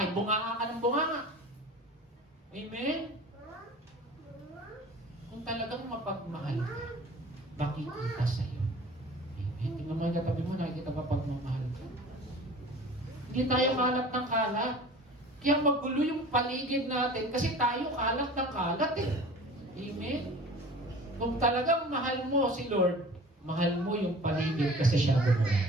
bunganga ka ng bunganga. Amen? Kung talagang mapagmahal ka, makikita sa'yo. Amen? Tingnan mo yung katabi mo, nakikita pa pagmamahal ka. Hindi tayo kalat ng kalat. Kaya magulo yung paligid natin kasi tayo kalat ng kalat eh. Amen? Kung talagang mahal mo si Lord, mahal mo yung paligid kasi siya gumawa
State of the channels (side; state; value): both; normal; correlation 0.42